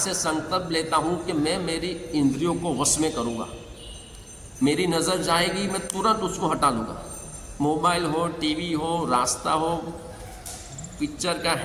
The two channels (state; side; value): identical; both; correlation 1.00